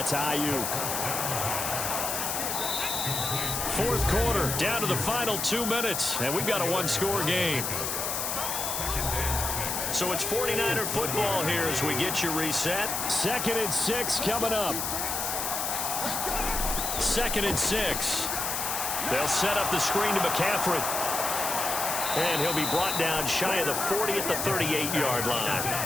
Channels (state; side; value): noise; left; hiss, 1 dB below the sound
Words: Ayuk. 4th quarter, down to the final 2 minutes, and we've got a 1-score game. So it's 49er football here as we get you reset. 2nd and 6 coming up. 2nd and 6. They'll set up the screen to McCaffrey. And he'll be brought down shy of the 40 at the 38-yard line.